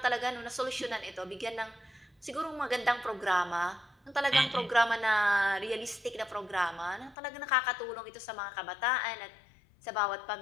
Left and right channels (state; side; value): drops out; right; at 7.2 s